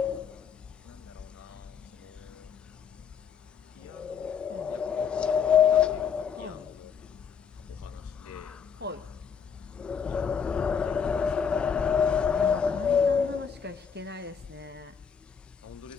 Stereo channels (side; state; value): right; quieter; 6.9 dB